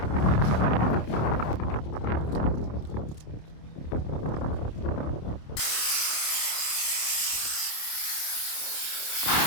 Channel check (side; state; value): right; late; 27 ms